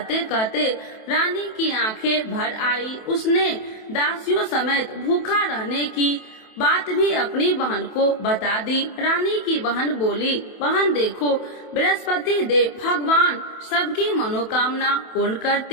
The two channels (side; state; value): right; late; 27 ms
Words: कहते रानी की आंखें भर आई। उसने दासियों समेत भूखा रहने की बात भी अपनी बहन को बता दी। रानी की बहन बोली, बहन देखो, बृहस्पति देव भगवान सबकी मनोकामना पूर्ण